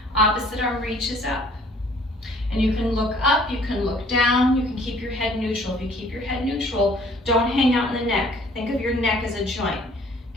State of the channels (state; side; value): normal; both; correlation 0.56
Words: Opposite arm reaches up. And you can look up, you can look down, you can keep your head neutral. If you keep your head neutral, don't hang out in the neck. Think of your neck as a joint.